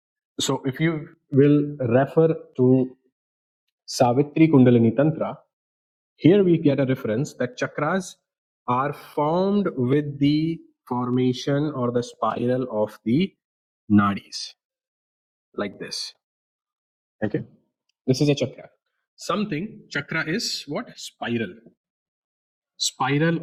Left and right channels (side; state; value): both; identical; correlation 1.00